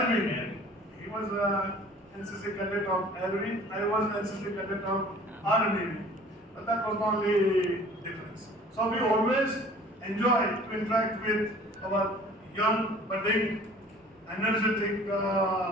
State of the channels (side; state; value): both; normal; correlation 0.49